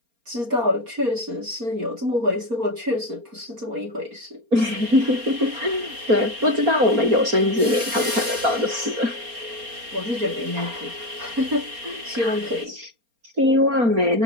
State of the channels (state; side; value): late; left; 4.3 ms